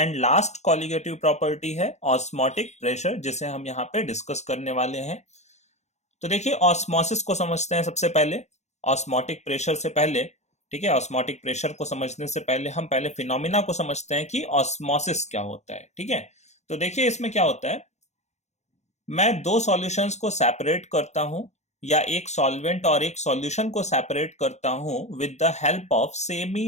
last colligative property है ऑस्मोटिक प्रेशर, जिसे हम यहाँ पे डिस्कस करने वाले हैं। तो देखिए ऑस्मोसिस को समझते हैं सबसे पहले, ऑस्मोटिक प्रेशर से पहले। ठीक है, ऑस्मोटिक प्रेशर को समझने से पहले हम पहले फिनोमिना को समझते हैं कि ऑस्मोसिस क्या होता है। ठीक है, तो देखिए इसमें क्या होता है, मैं दो सॉल्यूशंस को सेपरेट करता हूं या एक सॉल्वेंट और एक सॉल्यूशन को सेपरेट करता हूं with the help of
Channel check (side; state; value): right; late; 0.33 ms